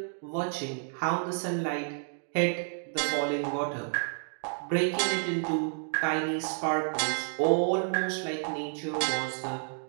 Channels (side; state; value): left; silent; 58 dB below the other